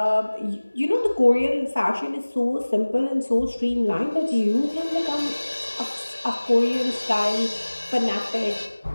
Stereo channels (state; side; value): inverted; both; correlation -1.00